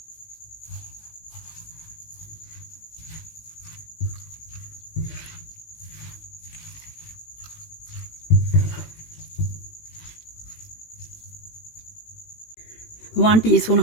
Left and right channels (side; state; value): right; late; 18 ms